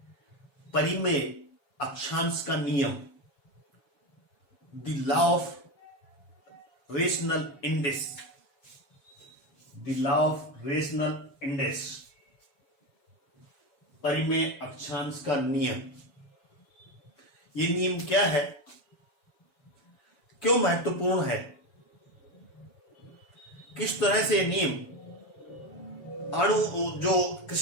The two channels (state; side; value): late; right; 7.1 ms